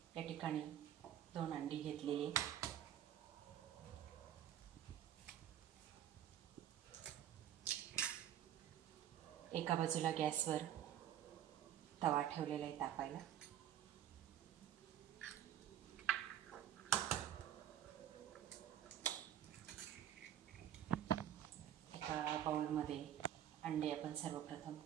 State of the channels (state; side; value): quieter; left; 10.5 dB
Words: या ठिकाणी 2 अंडी घेतलेली। एका बाजूला गॅसवर तवा ठेवलेला आहे तापायला। एका बाउलमध्ये अंडे आपण सर्वप्रथम